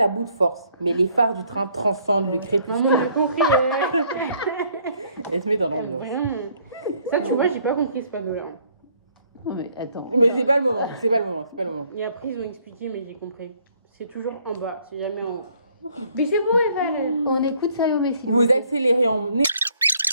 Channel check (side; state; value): both; inverted; correlation -0.64